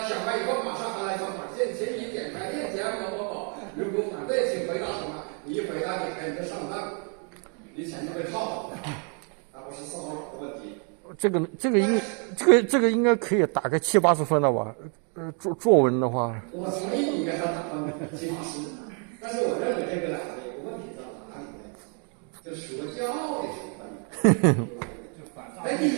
完以后马上还来一条短信，请你点开链接某某某。如果反对，请回答什么？你一回答点开你就上当，你钱就被套了，而不是骚扰的问题。这个应该可以打个70-80分了吧？作文的话，我同意你给他打分70-80。但是我认为这个呢，有个问题在哪里呢？就说教的成分。哎，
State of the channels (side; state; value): left; quieter; 39.3 dB